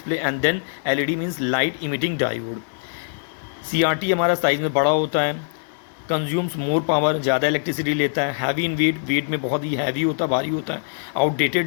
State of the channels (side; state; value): right; silent; digital silence